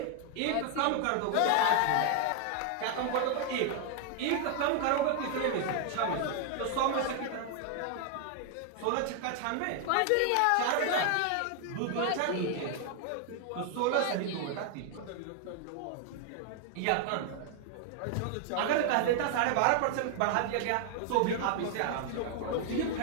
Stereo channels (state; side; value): different; both; correlation 0.00